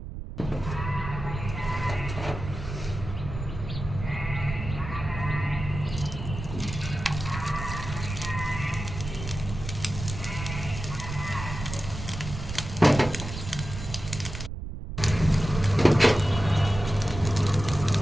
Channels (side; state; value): right; noise; rumble, 8 dB below the sound